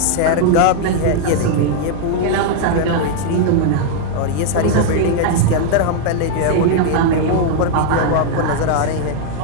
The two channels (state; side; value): different; both; correlation 0.00